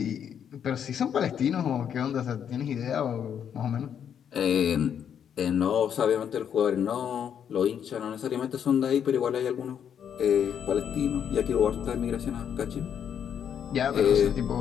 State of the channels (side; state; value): right; quieter; 8.5 dB